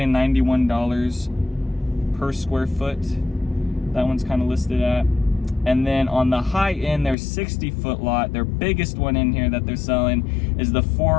per square foot. That one's kind of listed at. And then on the high end, their 60-foot lot, their biggest one in here that they're selling is the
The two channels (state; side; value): drops out; right; at 7.2 s